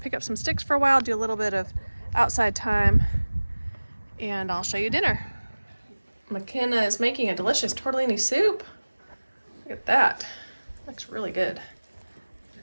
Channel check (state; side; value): inverted; both; correlation -1.00